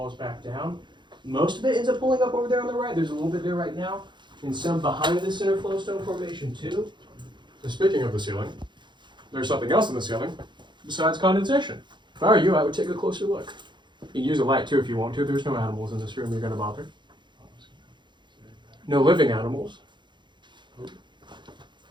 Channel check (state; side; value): late; left; 0.22 ms